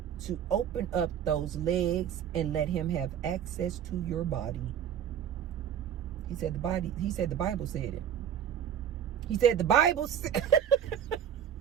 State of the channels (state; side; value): quieter; left; 9.1 dB